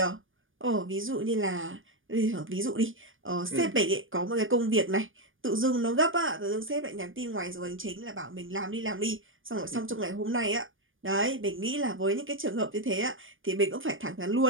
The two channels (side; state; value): left; late; 0.58 ms